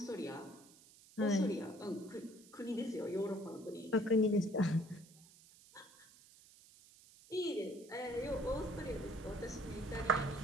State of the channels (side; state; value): right; noise; hiss, 23 dB below the sound